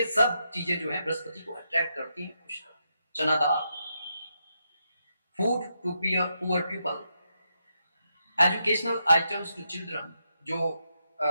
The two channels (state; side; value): inverted; both; correlation -0.83